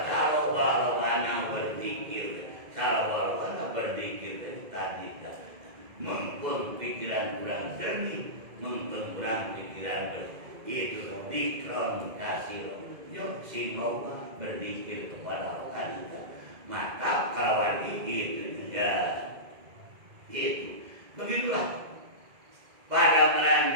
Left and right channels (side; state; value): left; late; 2.0 ms